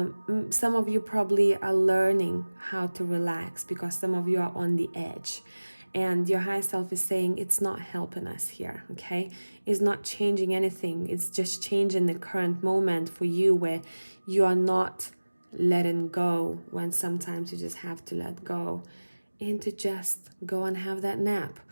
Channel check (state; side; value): inverted; both; correlation -1.00